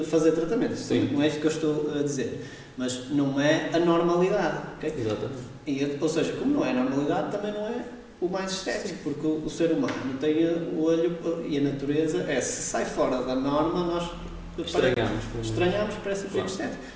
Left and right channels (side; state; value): both; identical; correlation 1.00